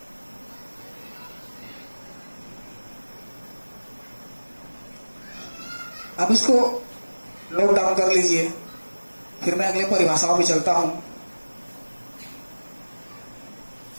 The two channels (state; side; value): inverted; both; correlation -1.00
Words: अब इसको नोट डाउन कर लीजिए, फिर मैं अगले परिभाषाओं में चलता हूं।